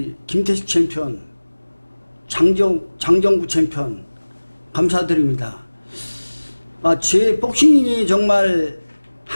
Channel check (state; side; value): inverted; both; correlation -1.00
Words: 김태식 챔피언, 장정구 챔피언 감사드립니다. 제 복싱이 정말